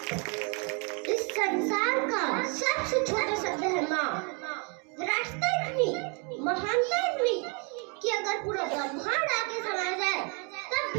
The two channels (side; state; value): left; quieter; 35.3 dB